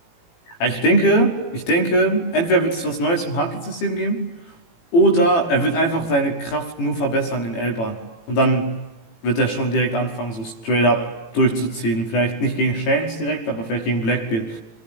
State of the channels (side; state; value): right; late; 18 ms